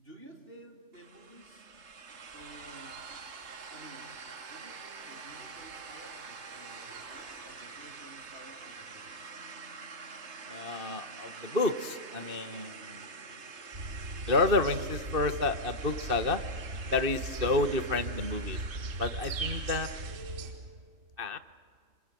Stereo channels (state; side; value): late; left; 2.6 ms